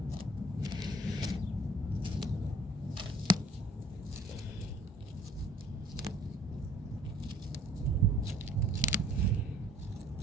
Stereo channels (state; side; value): normal; both; correlation 0.51